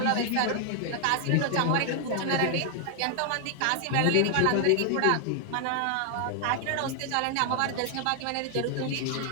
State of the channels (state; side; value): different; both; correlation 0.00